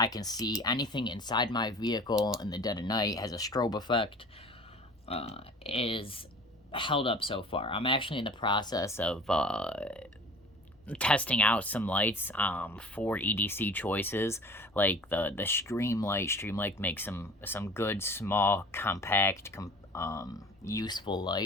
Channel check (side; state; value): both; normal; correlation 0.43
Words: can see anything inside my vehicle in the dead of night. Has a strobe effect. Is held up so far. I'm actually in the process of testing out some lights for EDC choices, like the Streamlight. Streamlight makes some good, small, compact, useful